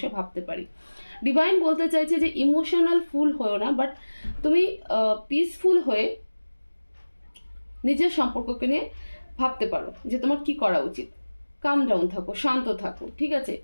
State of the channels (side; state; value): both; inverted; correlation -1.00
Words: ভাবতে পারি। ডিভাইন বলতে চাইছে যে ইমোশনাল ফুল হয়েও না, বাট তুমি পিসফুল হয়ে নিজের সম্পর্ককে নিয়ে ভাবতে পারো যে তোমার কি করা উচিত। কাম ডাউন থাকো, শান্ত থাকো, ঠিক আছে।